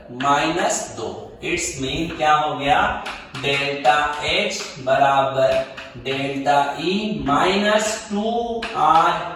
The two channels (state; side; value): identical; both; correlation 1.00